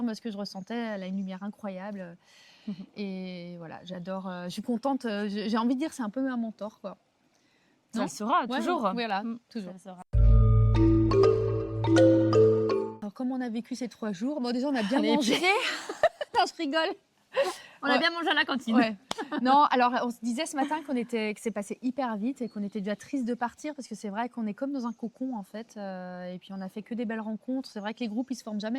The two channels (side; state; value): both; identical; correlation 1.00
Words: ce que je ressentais. Elle a une lumière incroyable. Et voilà, j'adore. Je suis contente. J'ai envie de dire, c'est un peu un mentor, quoi. Ça le sera, toujours. Voilà, toujours. Ça le sera. Alors, comment on a vécu ces 3 jours? Bon, déjà, on a bien On est mangé. Non, je rigole. On a bien mangé à la cantine. Ouais. Non, alors on se disait ce matin que c'est passé hyper vite et qu'on était déjà triste de partir parce que c'est vrai qu'on est comme dans un cocon en fait. Et puis on a fait que des belles rencontres. C'est vrai que les groupes ils se forment